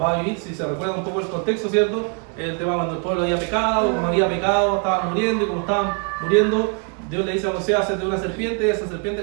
a vivir. Si se recuerda un poco el contexto, ¿cierto? El tema cuando el pueblo había pecado, como había pecado, estaban muriendo, y como estaban muriendo, Dios le dice a Moisés: hazte una serpiente, y esa serpiente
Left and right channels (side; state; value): left; quieter; 35.6 dB